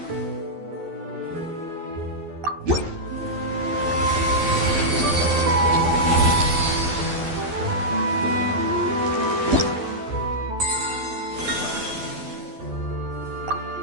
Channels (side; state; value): left; late; 12 ms